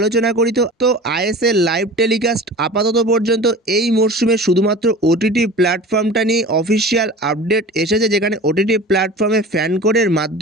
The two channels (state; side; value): normal; both; correlation 0.37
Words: করি তো আইএসএল লাইভ টেলিকাস্ট আপাতত পর্যন্ত এই মরশুমে শুধুমাত্র ওটিটি প্ল্যাটফর্মটা নিয়ে অফিসিয়াল আপডেট এসেছে, যেখানে ওটিটি প্ল্যাটফর্মে ফ্যান কোডের